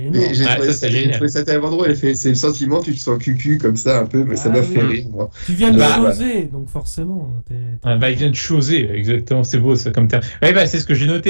Mais énorme. j'ai Ouais, trouvé ça, ça, c'est j'ai génial. trouvé ça tellement drôle. C'est le sentiment, tu te sens cucu comme ça un peu, mais ça Ah m'a oui. fait rire, moi. Tu viens de Bah, choser, donc forcément. bah, il vient de choser, exactement, c'est beau ça comme terme. Ouais, bah, c'est ce que j'ai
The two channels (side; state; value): both; inverted; correlation -1.00